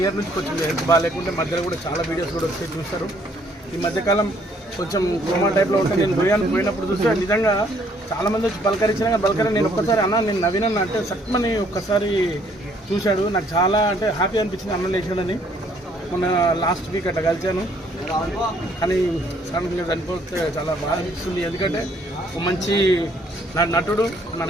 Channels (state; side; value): normal; both; correlation 0.64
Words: year నుంచి కొంచెం హెల్త్ బాగాలేకుంటే మధ్యలో కూడా చాలా వీడియోస్ కూడా వచ్చి చూస్తారు. ఈ మధ్యకాలం కొంచెం కోమా టైప్లో ఉంటుంది. నేను పోయినప్పుడు చూస్తే నిజంగా చాలామంది వచ్చి పలకరించినా కానీ పలకరి నేను ఒక్కసారి అన్న నేను నవీనన్న అంటే సట్మని ఒక్కసారి చూశాడు. నాకు చాలా అంటే హ్యాపీ అనిపించింది అన్న లేచాడని. మొన్న లాస్ట్ వీక్ అట్లా కలిశాను కానీ సడన్గా చనిపోతే చాలా బాధ అనిపిస్తుంది. ఎందుకంటే ఒక మంచి నటుడు మన